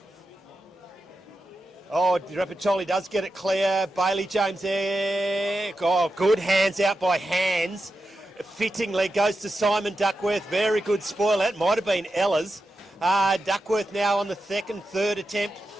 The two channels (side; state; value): both; normal; correlation 0.89